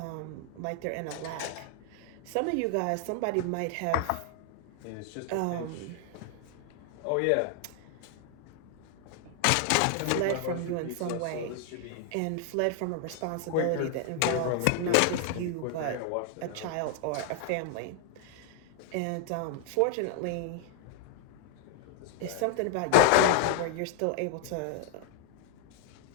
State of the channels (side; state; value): both; different; correlation 0.00